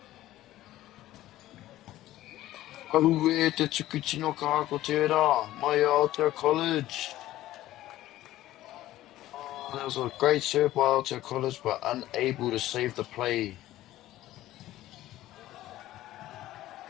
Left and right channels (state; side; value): quieter; right; 14.9 dB